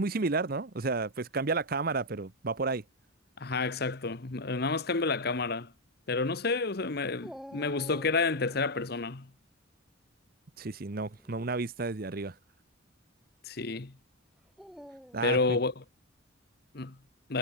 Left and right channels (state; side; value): normal; both; correlation -0.04